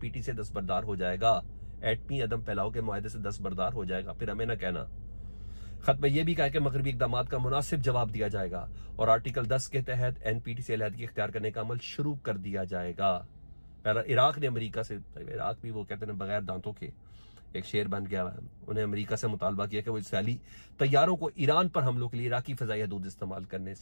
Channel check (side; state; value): both; inverted; correlation -1.00